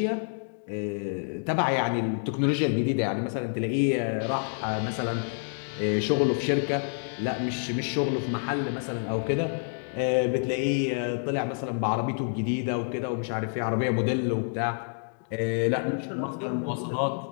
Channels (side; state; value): right; silent; digital silence